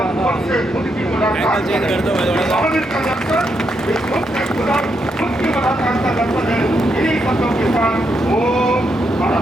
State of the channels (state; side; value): normal; both; correlation 0.80